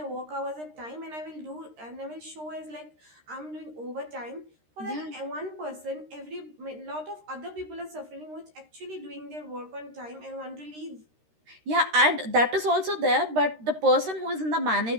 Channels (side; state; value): left; late; 13 ms